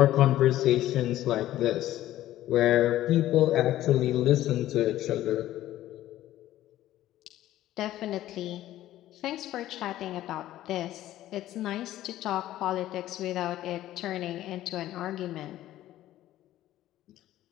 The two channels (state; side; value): quieter; right; 14.0 dB